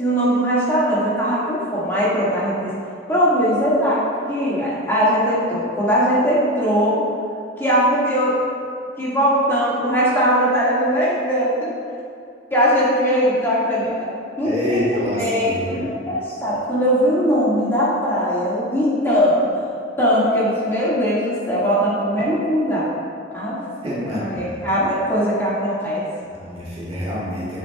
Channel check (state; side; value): normal; both; correlation 0.20